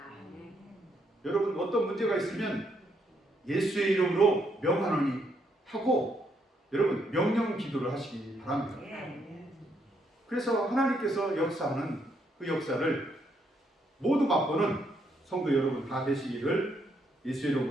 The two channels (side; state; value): both; normal; correlation 0.74